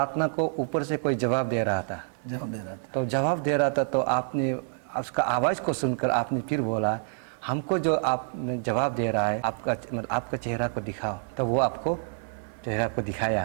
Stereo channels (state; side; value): silent; left; digital silence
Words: को ऊपर से कोई जवाब दे रहा था। तो जवाब दे रहा था तो आपने उसका आवाज़ को सुनकर आपने फिर बोला हमको जो आप जवाब दे रहा है आपका चेहरा को दिखाओ। तो वो आपको चेहरा को